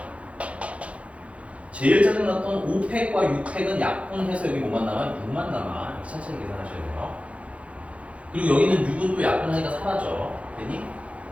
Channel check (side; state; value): left; late; 0.063 ms